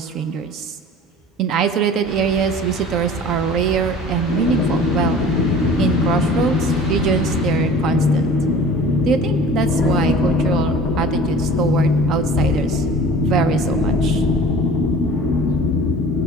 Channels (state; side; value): normal; both; correlation 0.43